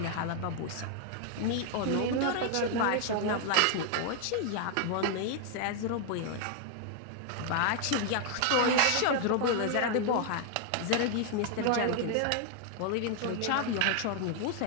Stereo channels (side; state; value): both; different; correlation 0.00